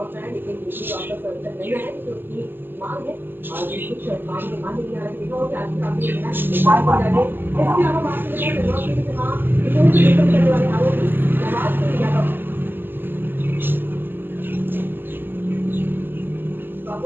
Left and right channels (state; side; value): late; left; 0.096 ms